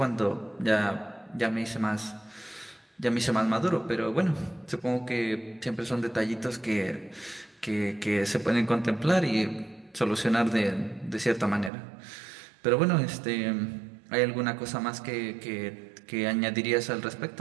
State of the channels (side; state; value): left; drops out; at 11.7 s